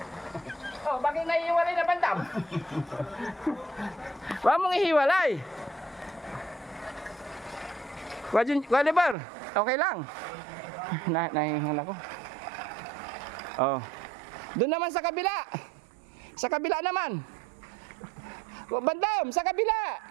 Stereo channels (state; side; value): drops out; left; at 9.2 s